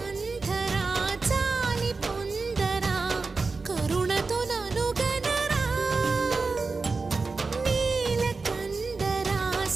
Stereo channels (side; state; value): left; quieter; 4.1 dB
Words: చాలి పొందరా కరుణతో నను గనరా నీలకంఠరా